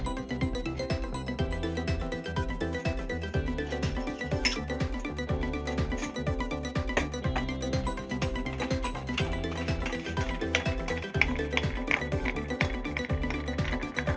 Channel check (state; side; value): identical; both; correlation 1.00